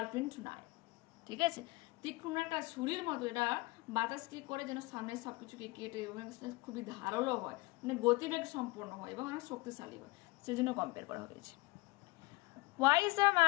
knife. ঠিক আছে, তীক্ষ্ণ একটা ছুরির মতো এটা বাতাস কি করে যেন সামনে সবকিছুকে কেটে, এবং খুবই ধারালো হয়, গতিবেগ সম্পন্ন হয় এবং অনেক শক্তিশালী হয়, সেজন্য কম্পেয়ার করা হয়েছে। Why is the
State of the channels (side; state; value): right; quieter; 23.1 dB